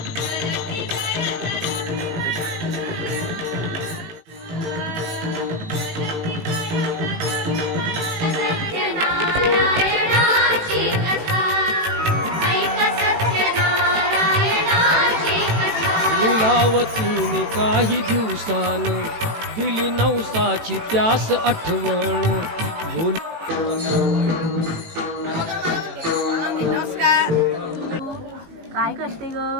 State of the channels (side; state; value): left; late; 18 ms